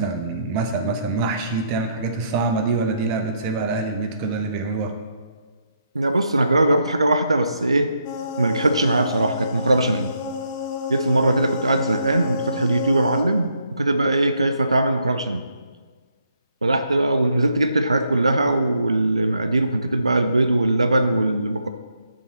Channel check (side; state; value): both; inverted; correlation -0.75